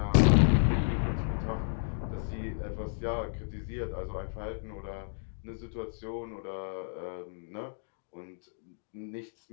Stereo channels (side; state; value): right; silent; digital silence